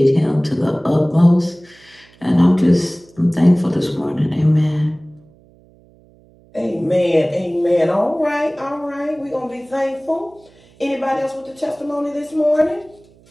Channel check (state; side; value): noise; right; hum, 29 dB below the sound